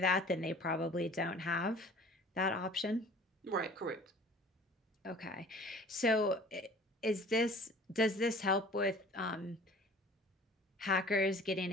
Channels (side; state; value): both; normal; correlation 0.47